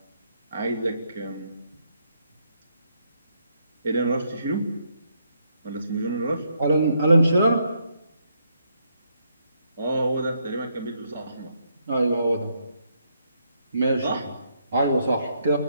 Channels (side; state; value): both; inverted; correlation -0.75